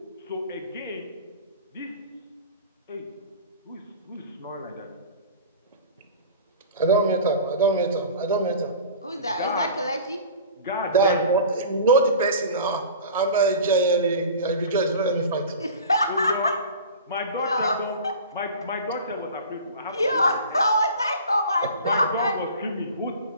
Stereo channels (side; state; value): both; inverted; correlation -0.38